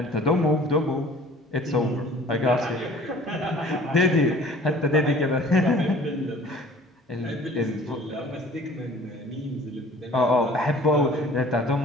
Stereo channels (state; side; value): normal; both; correlation 0.49